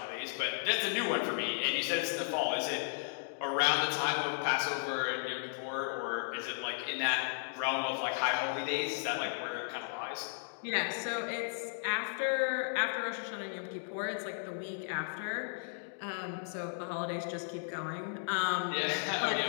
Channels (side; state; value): right; silent; digital silence